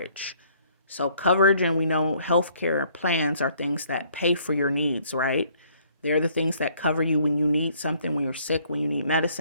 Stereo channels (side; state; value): both; inverted; correlation -0.63